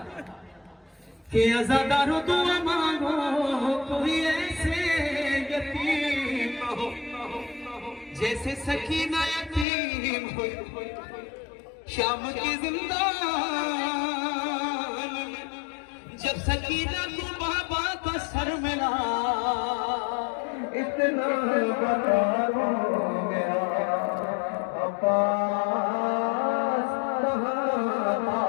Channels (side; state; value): right; drops out; at 9.7 s